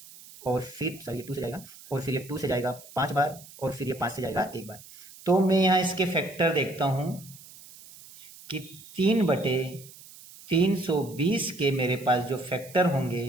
और फिर सॉरी 2 से जाएगा, और फिर ये 2 से जाएगा 5 बार, और फिर ये 5 से जाएगा 1 बार। तो मैं यहाँ इसके फैक्टर देखता हूँ कि 3/320 के मेरे पास जो फैक्टर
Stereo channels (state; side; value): noise; right; hiss, 19 dB below the sound